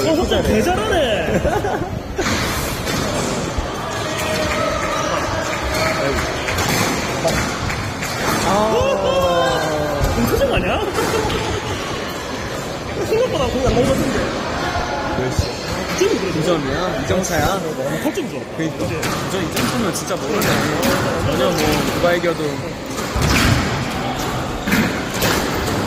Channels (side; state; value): both; identical; correlation 1.00